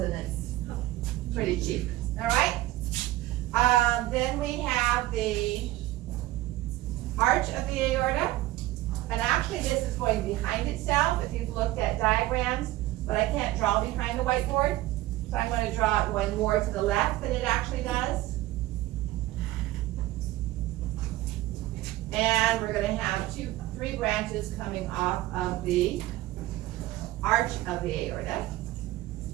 and it's pretty cheap. All right? Then we have the arch of the aorta. And actually this is going behind itself if you've looked at diagrams, but I can't draw behind the whiteboard. So I'm going to draw it going more to the left than it actually does. And we're going to have 3 branches coming off of the arch of the aorta,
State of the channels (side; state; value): left; quieter; 16.6 dB